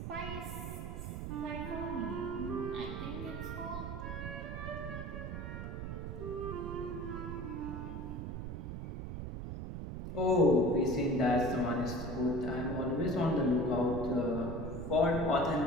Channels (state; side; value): noise; right; rumble, 5 dB below the sound